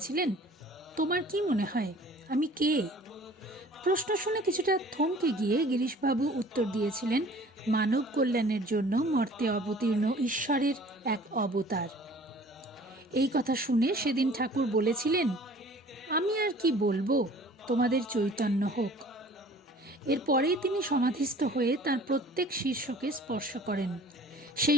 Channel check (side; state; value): both; normal; correlation 0.49